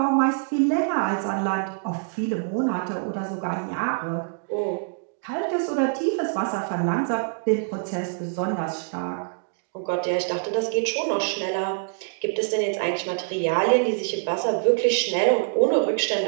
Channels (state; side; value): silent; left; digital silence